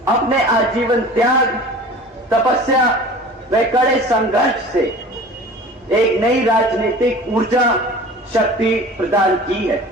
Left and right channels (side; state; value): both; normal; correlation 0.41